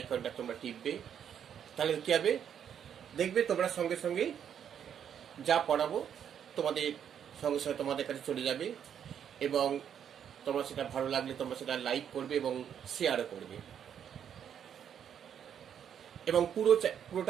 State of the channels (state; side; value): quieter; left; 8.7 dB